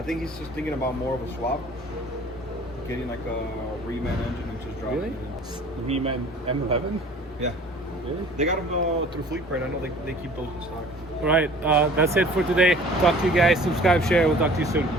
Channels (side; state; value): both; normal; correlation 0.49